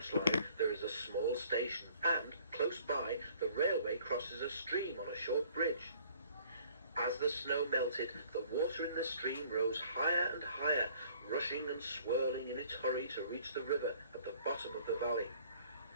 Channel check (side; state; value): both; inverted; correlation -0.57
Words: line there is a small station, and, close by, the railway crosses a stream on a short bridge. As the snow melted, the water in the stream rose higher and higher, rushing and swirling in its hurry to reach the river at the bottom of the valley.